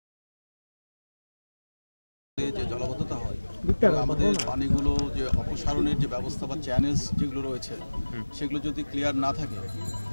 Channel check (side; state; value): both; inverted; correlation -1.00